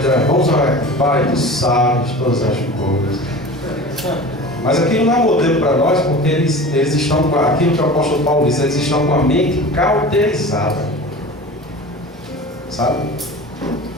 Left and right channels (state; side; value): normal; both; correlation 0.36